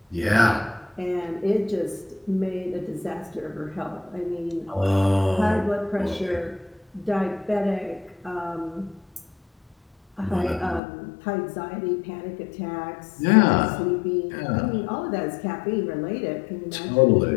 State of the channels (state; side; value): drops out; right; at 10.8 s